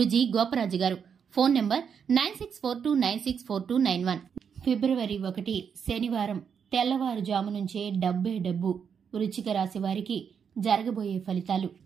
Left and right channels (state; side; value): quieter; left; 7.1 dB